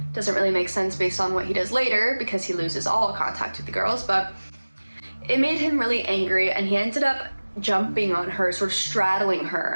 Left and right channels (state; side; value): inverted; both; correlation -1.00